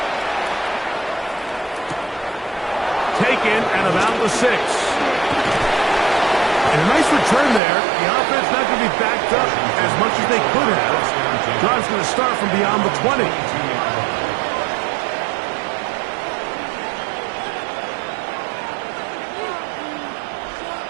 Taken at about the 6. And a nice return there. The offense not going to be backed up as much as they could have. Drive's going to start from beyond the 20.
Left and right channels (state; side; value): drops out; left; at 7.6 s